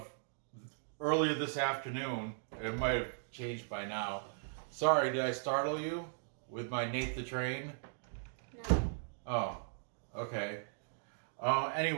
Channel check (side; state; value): left; silent; digital silence